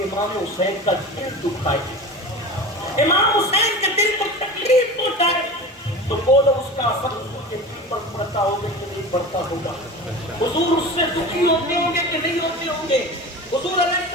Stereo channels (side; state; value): both; normal; correlation 0.32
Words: امام حسین کا دل دکھائے، امام حسین کے دل کو تکلیف پہنچائے، تو بولو اس کا اثر حضور کے دل پر پڑتا ہوگا کہ نہیں پڑتا ہوگا؟ حضور اس سے دکھی ہوتے ہوں گے کہ نہیں ہوتے ہوں گے؟ حضور علیہ